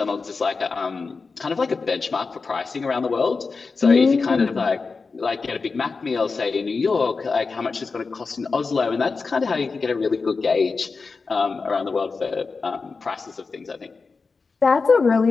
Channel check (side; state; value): right; quieter; 4.4 dB